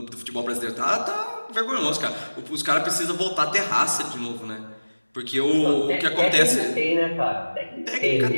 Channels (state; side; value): inverted; both; correlation -1.00